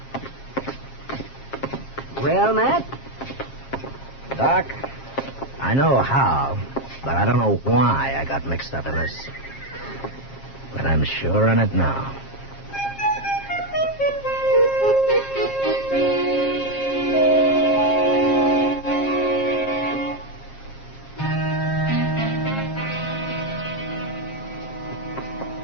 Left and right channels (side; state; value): right; late; 7.4 ms